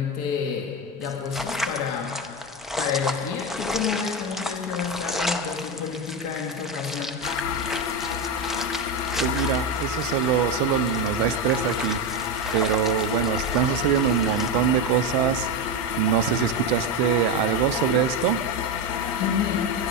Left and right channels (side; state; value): both; normal; correlation 0.13